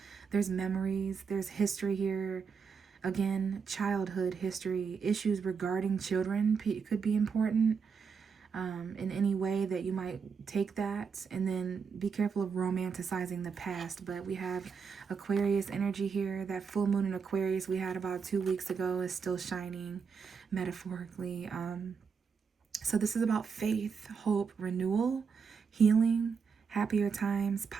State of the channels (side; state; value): left; quieter; 5.9 dB